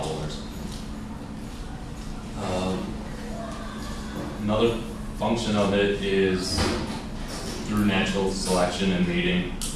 or something. Another function of it is through natural selection and mating.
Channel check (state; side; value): identical; both; correlation 1.00